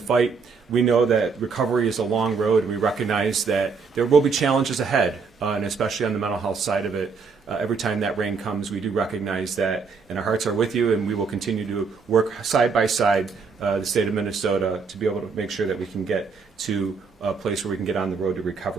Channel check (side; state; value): left; quieter; 5.1 dB